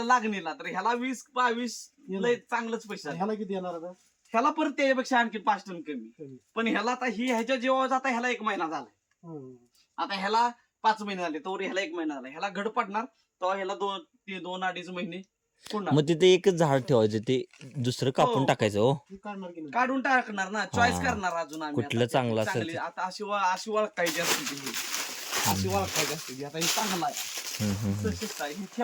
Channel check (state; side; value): identical; both; correlation 1.00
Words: लागणीला तर ह्याला 20-22 लय चांगलंच पैसा. ह्याला किती येणार आता? ह्याला परत त्याच्यापेक्षा आणखी 5 टन कमी. पण ह्याला आता ही ह्याच्या जीवावर जाता ह्याला 1 महिना झालाय. आता ह्याला 5 महिने झाले तर ह्याला 1 महिना झाला. ह्याला घड पडणार तेव्हा ह्याला 2-2.5 महिने मग तिथे एकच झाड ठेवायचं ते दुसरं कापून टाकायचं. हो काढून टाकणार ना. चॉईस करणार अजून आम्ही कुठलं चांगलं असेल. आता अशी ओळखायची असते ती. अशी ओळखायची असते ती. आता हे चांगलं आहे हे